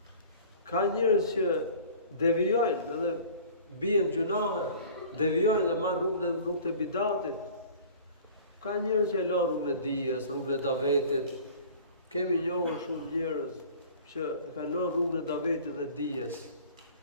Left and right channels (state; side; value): inverted; both; correlation -0.45